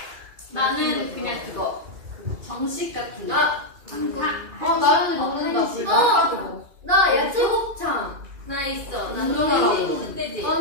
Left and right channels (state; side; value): late; left; 2.4 ms